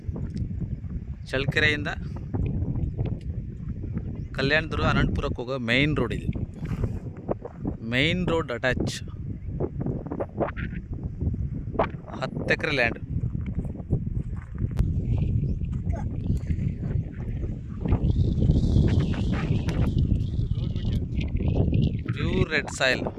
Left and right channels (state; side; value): identical; both; correlation 1.00